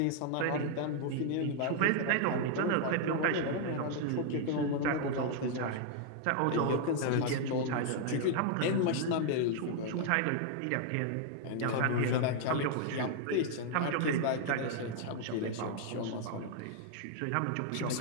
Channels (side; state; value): both; different; correlation 0.00